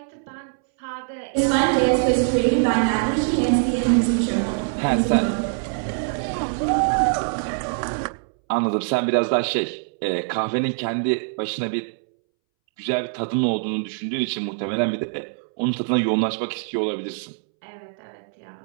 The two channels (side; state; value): left; silent; 63 dB below the other